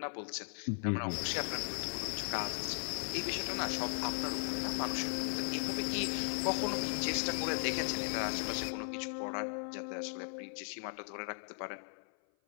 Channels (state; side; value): silent; right; 53 dB below the other